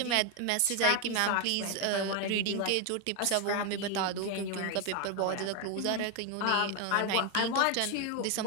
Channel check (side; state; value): both; different; correlation 0.01